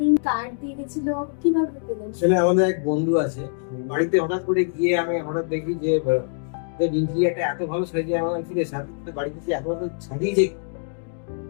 কার্ড দিয়ে গেছিল, কিভাবে পেলেন? আসলে আমাদের এক বন্ধু আছে, বাড়িতে হঠাৎ করে গিয়ে আমি হঠাৎ দেখি যে ইন্টেরিয়ারটা এত ভালো সাজিয়ে আমার ফিরে সাথে বাড়িতে যে এত ভালো সাজিয়েছে,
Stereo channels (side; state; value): right; silent; digital silence